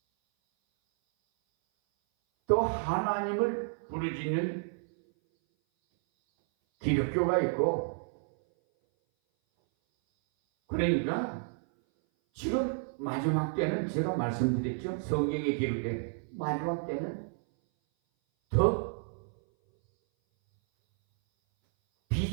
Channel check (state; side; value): silent; left; 57 dB below the other